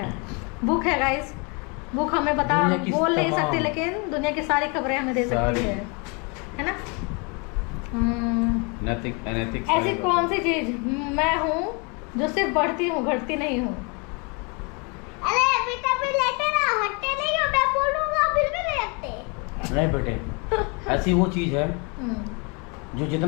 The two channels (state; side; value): quieter; right; 32.3 dB